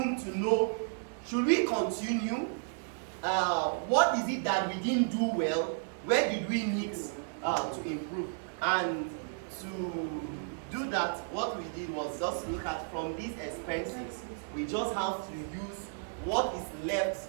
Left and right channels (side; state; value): left; silent; digital silence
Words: to know, should we continue? What is it that we didn't do well? Where did we need to improve? And to do that, what we did was just look at from these expenses, we just have to use what is left